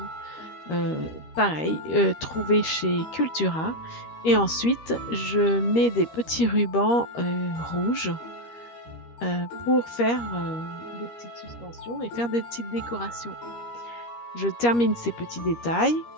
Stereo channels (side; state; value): right; late; 13 ms